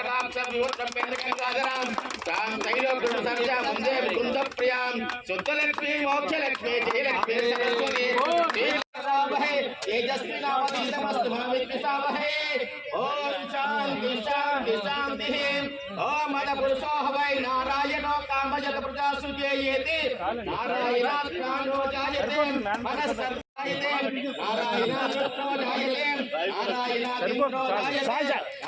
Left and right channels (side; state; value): both; identical; correlation 1.00